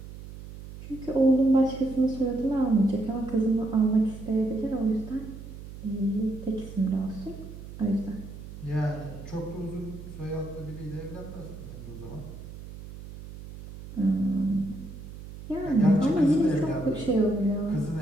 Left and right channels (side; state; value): right; noise; hum, 13 dB below the sound